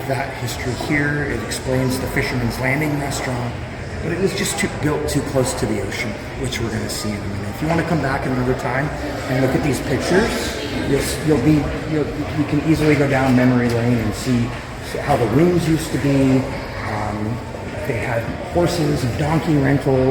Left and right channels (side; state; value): both; identical; correlation 1.00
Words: that history here. It explains the Fisherman's Landing restaurant, but it was just built too close to the ocean, which we're going to see in a minute. If you want to come back another time and look at these pictures, you can easily go down memory lane and see how the rooms used to be. They had horses and donkey